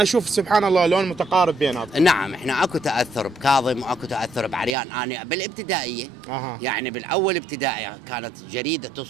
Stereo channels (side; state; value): left; drops out; at 4.7 s